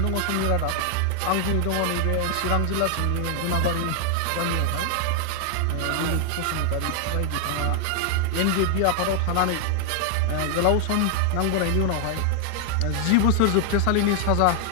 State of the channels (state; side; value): different; both; correlation 0.00